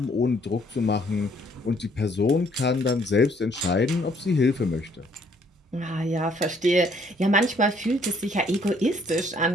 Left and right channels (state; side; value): normal; both; correlation 0.64